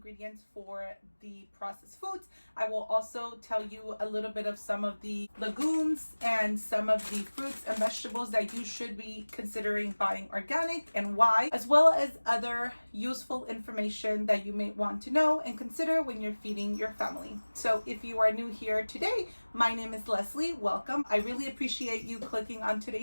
for the processed foods. I will also tell you a little bit of some of the legumes and some of the fruits and vegetables that you should be considering buying organic and why, as well as other useful information that you may want to know and consider when you're feeding your family. So if you are new here today, my name is Leslie. Welcome. I really appreciate you clicking on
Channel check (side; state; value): both; inverted; correlation -1.00